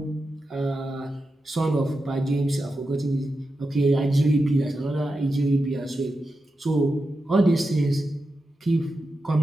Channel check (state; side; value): normal; both; correlation 0.90